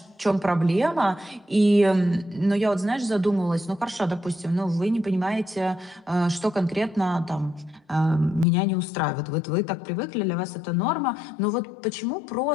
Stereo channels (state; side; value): drops out; right; at 8.5 s